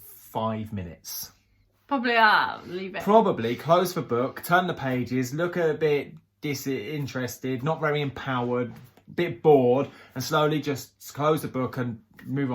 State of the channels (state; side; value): identical; both; correlation 1.00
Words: 5 minutes? Probably leave it. Probably close the book, turn the pages, look a bit disinterested, not very empowered, a bit bored, and slowly just close the book and move